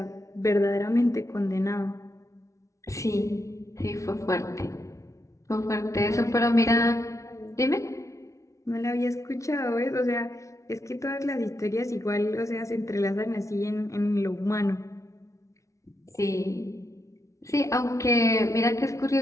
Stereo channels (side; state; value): right; late; 0.15 ms